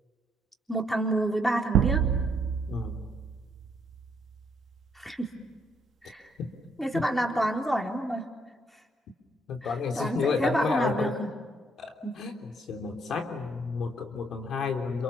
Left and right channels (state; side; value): normal; both; correlation 0.70